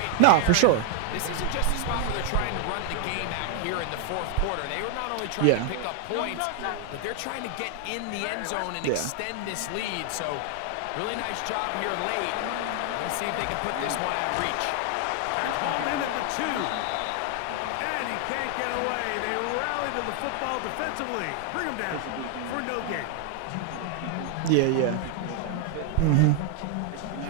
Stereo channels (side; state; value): both; different; correlation 0.00